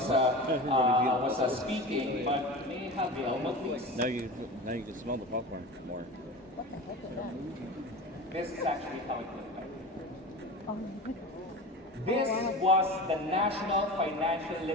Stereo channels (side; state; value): both; normal; correlation 0.31